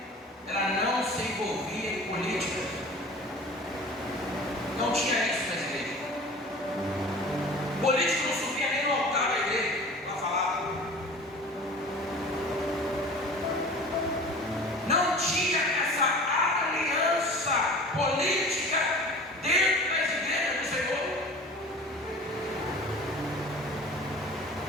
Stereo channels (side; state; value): both; normal; correlation 0.41